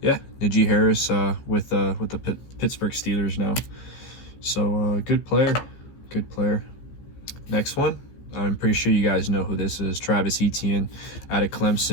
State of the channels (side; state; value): right; late; 15 ms